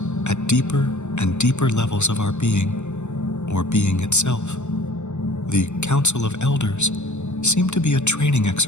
at deeper and deeper levels of our being, or being itself. The Council of Elders seemed to be a training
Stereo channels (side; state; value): right; late; 0.83 ms